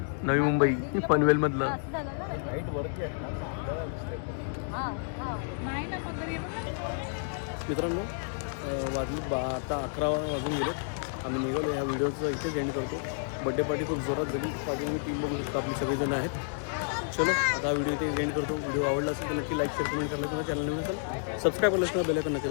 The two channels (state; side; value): silent; right; digital silence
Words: नवी मुंबई पनवेल मधलं. नाही ना पकडे बघ ना. मित्रांनो वाजले आता 11 वाजून गेलेत. आम्ही निघालो. ह्या व्हिडिओचा इथेच एंड करतो. बड्डे पार्टी खूप जोरात झाली. पार्टीमध्ये टीम बघू शकतो आपली सगळेजण आहेत. चलो आता हा व्हिडिओ इथे एंड करतो. व्हिडिओ आवडला असेल तर नक्की लाईक शेअर कमेंट करायला. तुम्हाला चॅनल नवीन असेल सबस्क्राईब करायला बेल आयकॉन नक्की